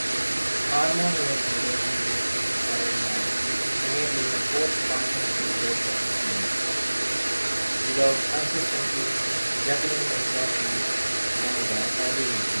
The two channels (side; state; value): both; inverted; correlation -1.00